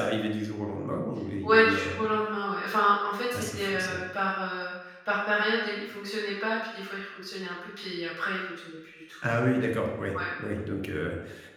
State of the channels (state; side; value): identical; both; correlation 1.00